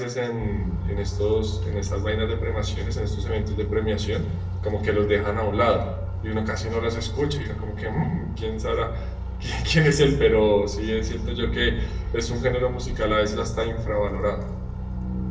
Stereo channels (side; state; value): both; identical; correlation 1.00